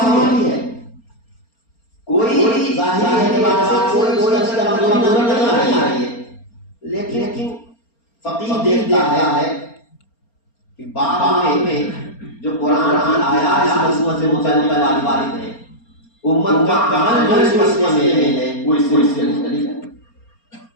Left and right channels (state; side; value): late; right; 4.3 ms